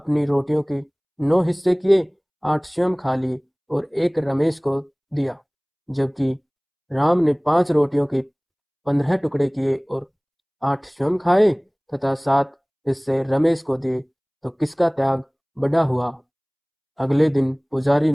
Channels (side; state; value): both; identical; correlation 1.00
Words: रोटियों के 9 हिस्से किए, 8 स्वयं खा लिए और एक रमेश को दिया, जबकि राम ने 5 रोटियों के 15 टुकड़े किए और 8 स्वयं खाए तथा 7 हिस्से रमेश को दिए। तो किसका त्याग बड़ा हुआ? अगले दिन पुजारी